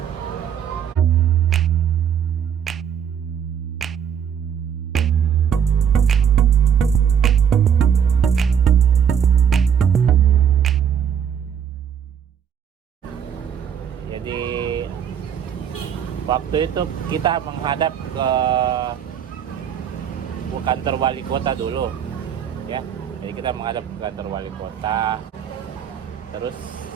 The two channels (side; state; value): left; quieter; 8.1 dB